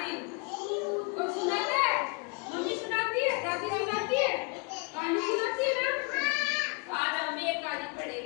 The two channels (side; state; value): right; quieter; 32.3 dB